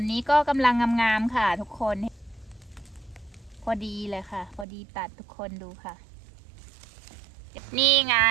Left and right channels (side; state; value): left; drops out; at 4.7 s